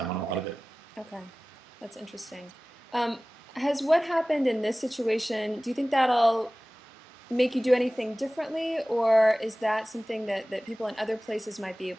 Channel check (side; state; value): both; normal; correlation 0.98